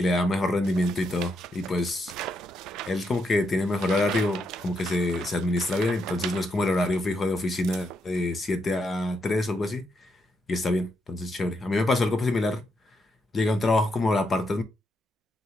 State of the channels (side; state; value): both; normal; correlation 0.80